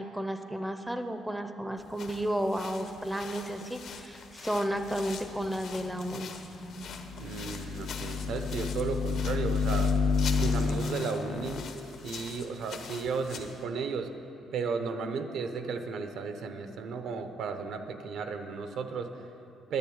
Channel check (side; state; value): both; normal; correlation 0.74